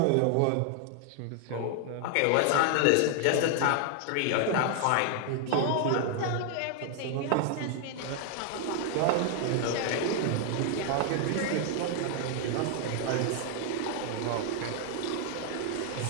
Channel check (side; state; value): both; different; correlation 0.00